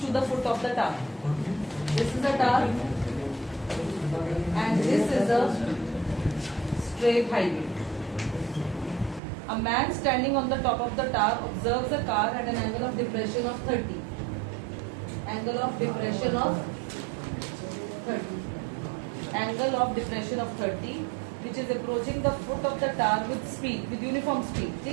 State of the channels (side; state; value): left; drops out; at 9.2 s